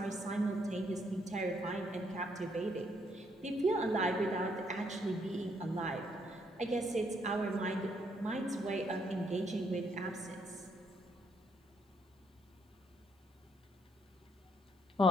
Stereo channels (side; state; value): both; normal; correlation 0.72